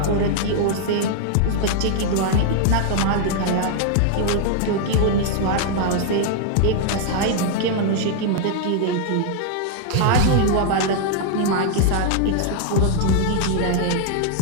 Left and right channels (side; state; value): both; different; correlation 0.00